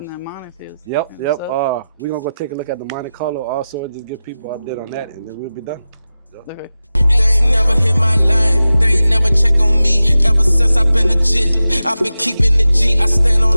that money feels. Yep. We're gonna go take a look at the Monte Carlo also, just give people an update on that, and then we'll be done. Okay. They ain't never hit my line, they ain't never check on me. Ever since I've been legit, I've been keeping the G. I stand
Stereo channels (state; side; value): inverted; both; correlation -0.94